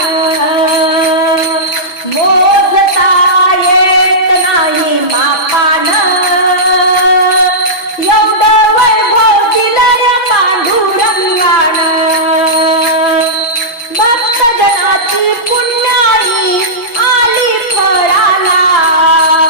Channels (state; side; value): late; right; 6.1 ms